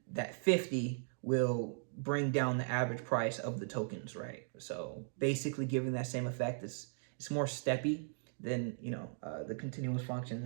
that 50 will bring down the average price of the tokens, right? So basically giving that same effect. It's more steppy than, the continuous function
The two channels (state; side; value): silent; left; digital silence